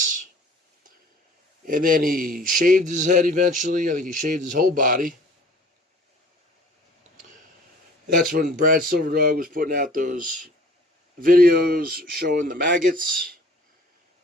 And then he shaved his head eventually. I think he shaved his whole body. That's when Brad Silverdog was putting out those videos showing the maggots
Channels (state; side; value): normal; both; correlation 0.50